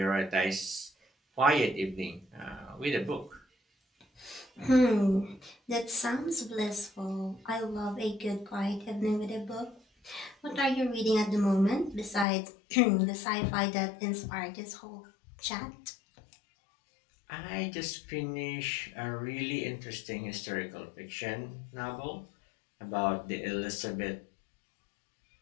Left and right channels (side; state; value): right; drops out; at 12.2 s